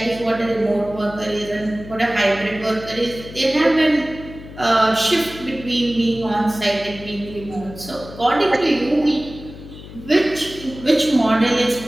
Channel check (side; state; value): left; noise; hum, 15 dB below the sound